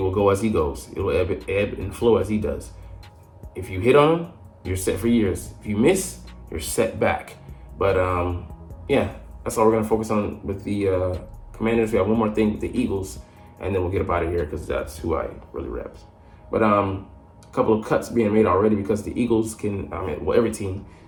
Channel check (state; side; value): identical; both; correlation 1.00